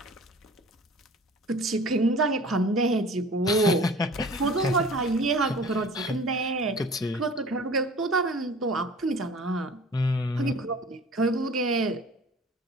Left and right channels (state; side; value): normal; both; correlation 0.45